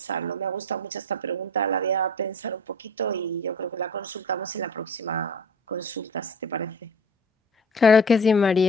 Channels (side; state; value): both; normal; correlation 0.42